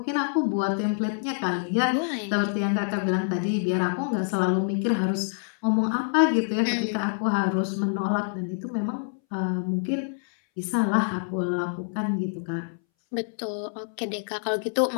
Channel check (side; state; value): right; silent; 61 dB below the other